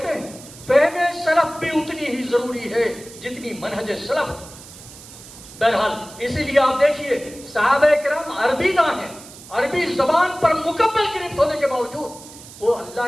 ہیں فہم سلف بھی اتنی ہی ضروری ہے جتنی منہج سلف۔ بہرحال اسی لیے آپ دیکھیے صحابہ کرام عربی داں ہیں، عربی زبان پر مکمل گرفت ہونے کے باوجود وہ اللہ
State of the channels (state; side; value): noise; right; hiss, 18 dB below the sound